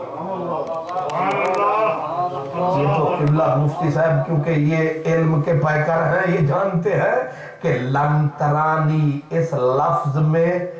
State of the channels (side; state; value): both; identical; correlation 1.00